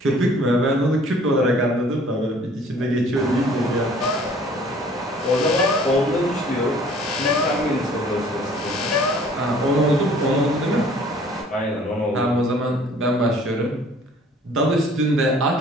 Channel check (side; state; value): both; normal; correlation 0.53